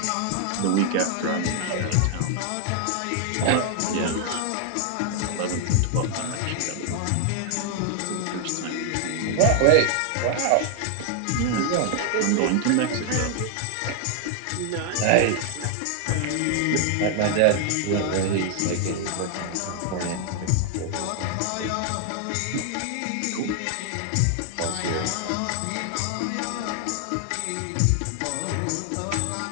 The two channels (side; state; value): both; different; correlation 0.00